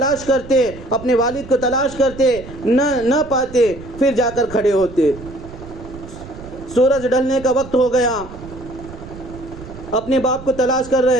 کرتے، اپنے والد کو تلاش کرتے، نہ پاتے، پھر جا کر کھڑے ہوتے۔ سورج ڈھلنے کا وقت ہو گیا، اپنے باپ کو تلاش کر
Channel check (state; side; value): noise; right; rumble, 15 dB below the sound